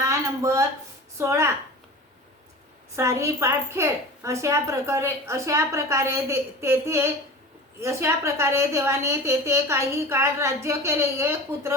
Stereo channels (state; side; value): normal; both; correlation 0.34